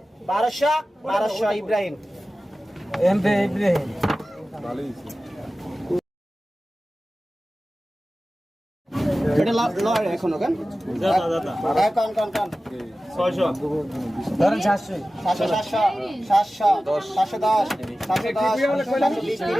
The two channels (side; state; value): both; normal; correlation 0.95